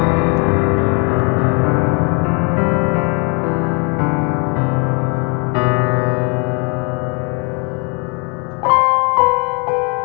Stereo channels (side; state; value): right; quieter; 34.6 dB